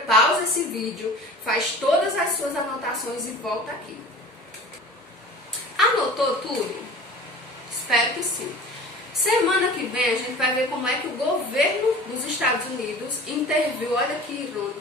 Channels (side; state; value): both; normal; correlation 0.40